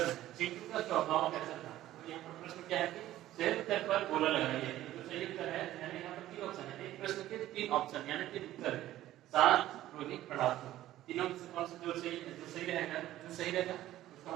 है चिंटू का स्वभाव कैसा था? तो यहाँ पर प्रश्न क्या है कि सही उत्तर पर गोला लगाइए। तो सही उत्तर है यानी यहाँ पर 3 ऑप्शन है, एक प्रश्न के 3 ऑप्शन यानी 3 उत्तर है, शांत, क्रोधी, पढ़ाकू। तीनों में से कौन सा जो सही रहेगा, जो सही रहेगा उसको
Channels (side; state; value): left; quieter; 14.2 dB